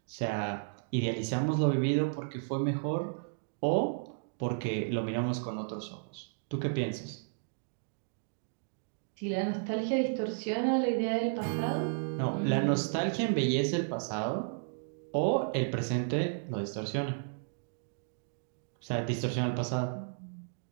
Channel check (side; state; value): left; silent; digital silence